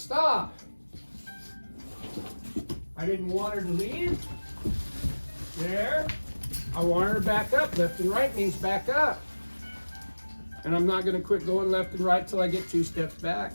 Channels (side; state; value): both; inverted; correlation -1.00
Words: I didn't want her to leave. There. I want her back up. Left and right means back up. And I'm not going to quit going left and right till I get 2 steps back.